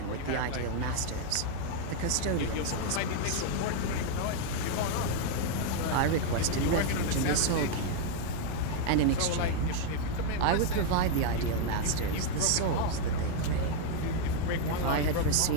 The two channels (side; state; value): both; different; correlation 0.00